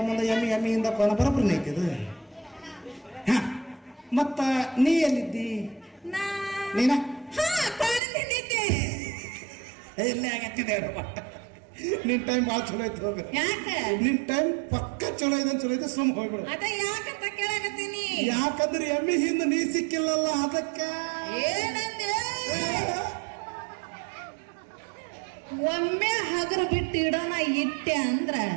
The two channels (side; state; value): left; drops out; at 8.0 s